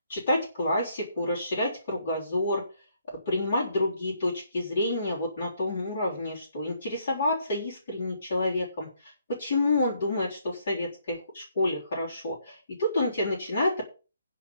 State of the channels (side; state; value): both; inverted; correlation -0.70